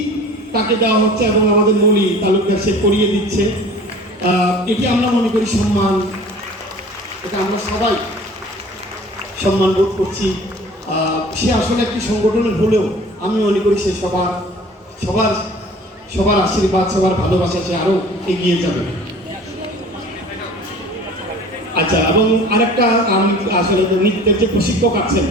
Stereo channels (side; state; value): both; normal; correlation 0.45